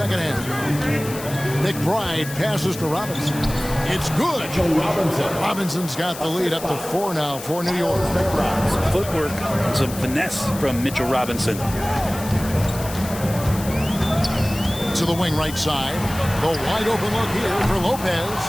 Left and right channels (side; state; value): left; noise; hiss, 12 dB below the sound